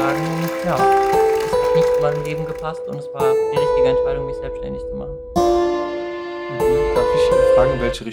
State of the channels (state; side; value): identical; both; correlation 1.00